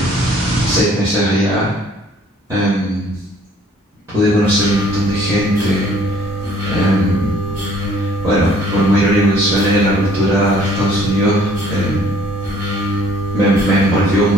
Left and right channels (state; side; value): normal; both; correlation 0.58